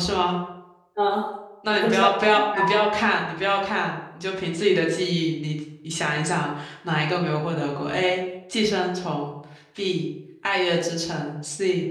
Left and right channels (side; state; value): both; identical; correlation 1.00